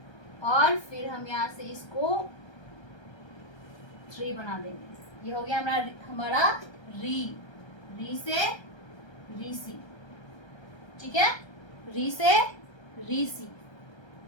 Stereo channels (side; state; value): right; late; 1.3 ms